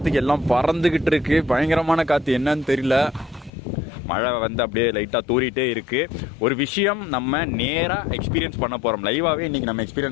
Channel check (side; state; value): right; drops out; at 3.5 s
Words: எல்லாம் பறந்துக்கிட்டு இருக்கு. பயங்கரமான காற்று, என்னன்னு தெரியல. மழை வந்து அப்படியே லைட்டாக தூரிட்டே இருக்குது. ஒரு விஷயம் நம்ம நேராக எக்ஸ்பீரியன்ஸ் பண்ண போகிறோம். லைவாகவே இன்றைக்கி நம்ம